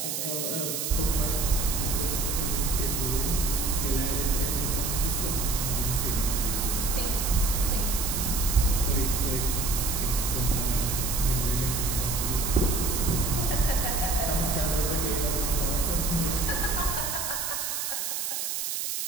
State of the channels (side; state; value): right; noise; hiss, 2 dB below the sound